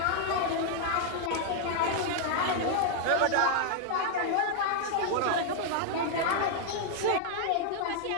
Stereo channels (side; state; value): both; different; correlation 0.00